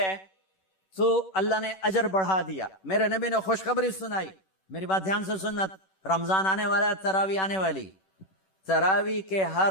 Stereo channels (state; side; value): late; right; 11 ms